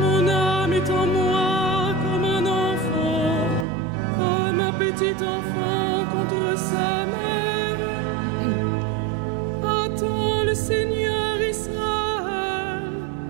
âme est en moi comme un enfant, comme un petit enfant contre sa mère. Attends le Seigneur Israël,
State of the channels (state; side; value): drops out; left; at 3.7 s